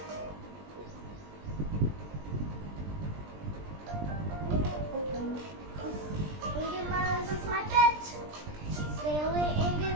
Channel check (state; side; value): late; left; 20 ms